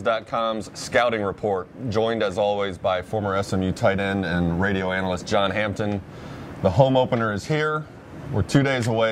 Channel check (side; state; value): both; identical; correlation 1.00